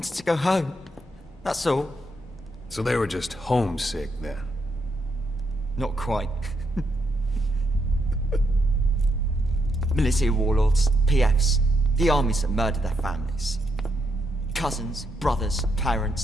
to go home. That's all. So they were just homesick then. Not quite. Militia warlords, PFs, the armies that murdered their families. Cousins, brothers,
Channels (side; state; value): both; normal; correlation 0.78